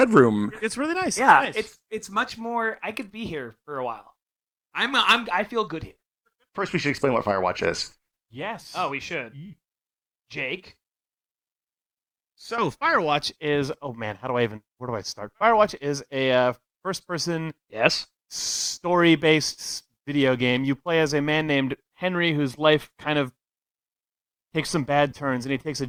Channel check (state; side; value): identical; both; correlation 1.00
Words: It's really nice. Yeah, nice. it's much more. I could be here for a while. I feel good here. First, we should explain what Firewatch is. Yes. Oh, we should. Jake. So Firewatch is. Oh man, where do I start? Firewatch is a first-person Yes. story-based video game. You play as a man named Henry, whose life kind of takes some bad turns, and he takes a